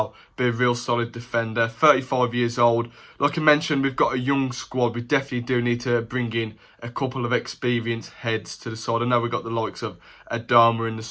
be a real solid defender. 35 years old. Like I mentioned, we've got a young squad. We definitely do need to bring in a couple of experienced heads to the side. I know we've got the likes of Adama in the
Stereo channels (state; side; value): identical; both; correlation 1.00